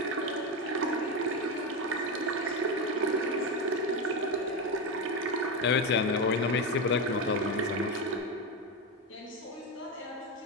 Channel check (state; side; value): normal; both; correlation 0.13